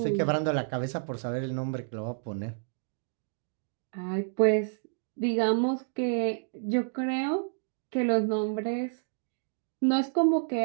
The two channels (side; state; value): left; silent; digital silence